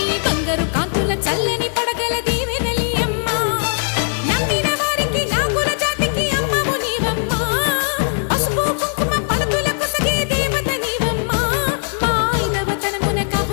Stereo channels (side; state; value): right; silent; 66 dB below the other